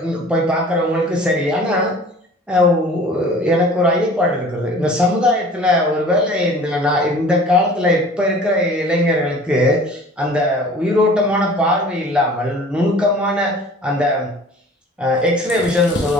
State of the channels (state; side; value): normal; both; correlation 0.46